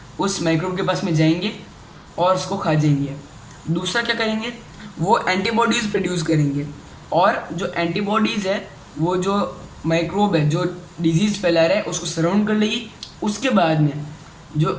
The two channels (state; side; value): identical; both; correlation 1.00